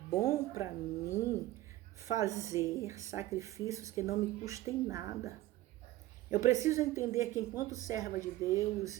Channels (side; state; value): left; quieter; 16.0 dB